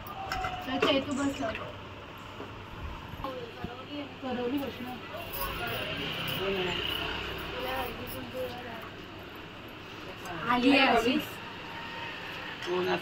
तू बस करवली बसणार आली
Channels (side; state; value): both; identical; correlation 1.00